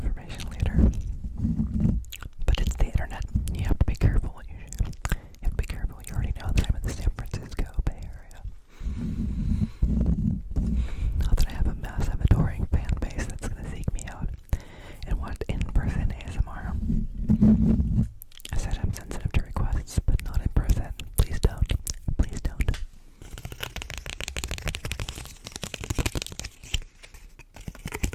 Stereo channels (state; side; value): identical; both; correlation 1.00